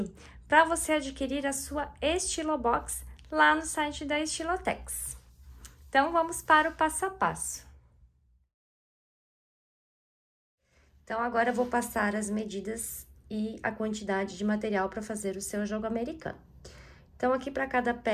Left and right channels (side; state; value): both; identical; correlation 1.00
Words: para você adquirir a sua Estilobox lá no site da Estilotex. Então, vamos para o passo a passo. Então, agora eu vou passar as medidas e a quantidade de material para fazer o seu jogo americano. Então, aqui para cada